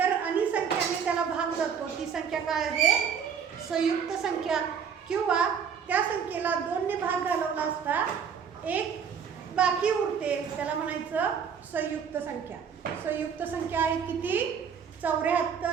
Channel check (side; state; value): left; quieter; 7.1 dB